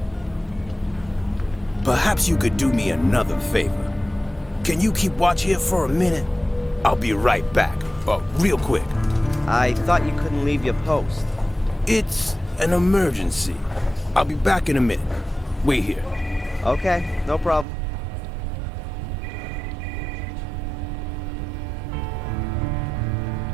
Perhaps you could do me another favor. Can you keep watch here for a minute? I'll be right back, real quick. I thought you couldn't leave your post. It's an emergency. I'll be back in a minute. Wait here. Okay, no problem.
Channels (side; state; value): left; drops out; at 17.7 s